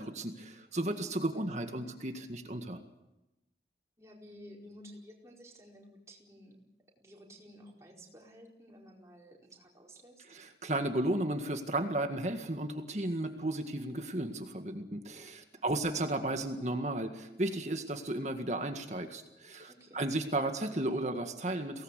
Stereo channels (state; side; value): normal; both; correlation 0.46